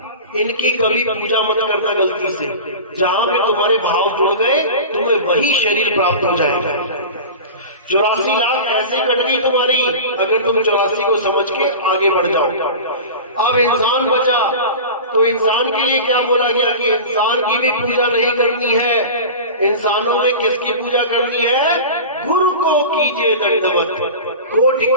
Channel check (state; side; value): inverted; both; correlation -0.32